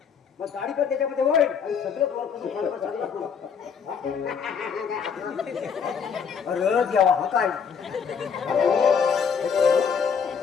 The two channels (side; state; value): right; quieter; 6.6 dB